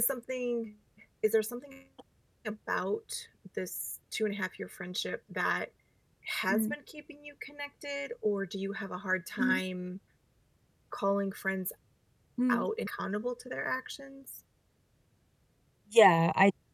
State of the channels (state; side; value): identical; both; correlation 1.00